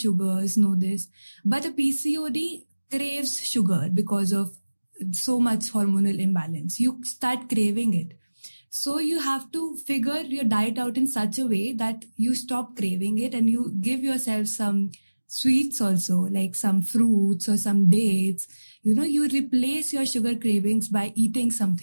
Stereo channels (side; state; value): both; inverted; correlation -1.00